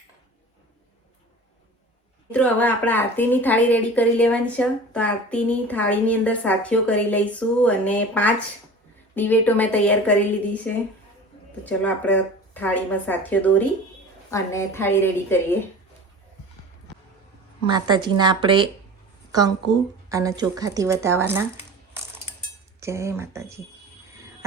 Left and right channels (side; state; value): both; normal; correlation 0.38